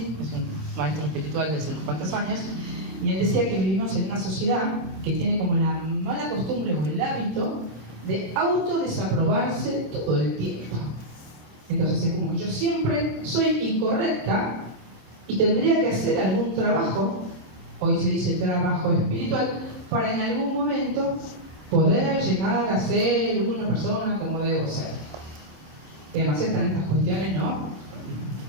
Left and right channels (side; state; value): left; late; 26 ms